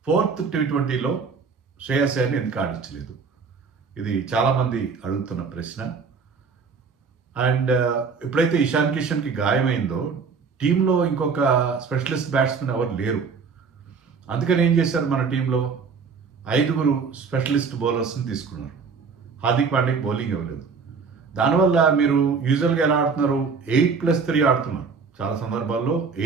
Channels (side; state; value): left; quieter; 5.3 dB